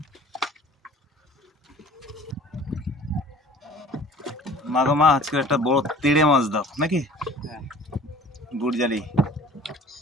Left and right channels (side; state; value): both; normal; correlation 0.48